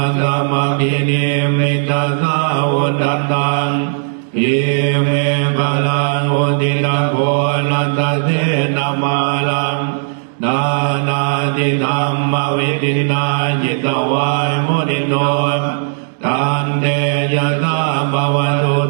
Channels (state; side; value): silent; left; digital silence